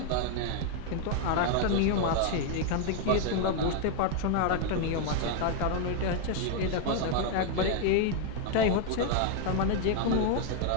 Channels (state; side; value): different; both; correlation 0.00